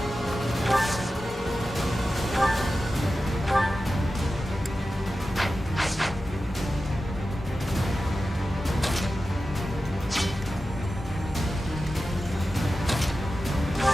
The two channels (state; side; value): normal; both; correlation 0.93